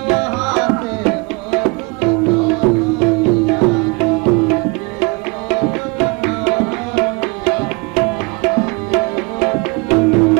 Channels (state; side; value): quieter; left; 28.4 dB